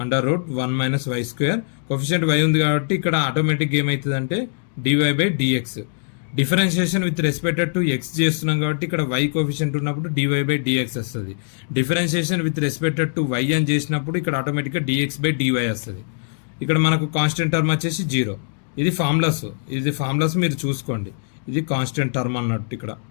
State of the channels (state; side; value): silent; right; digital silence